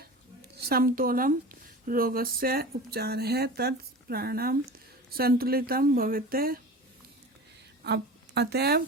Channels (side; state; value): both; normal; correlation 0.34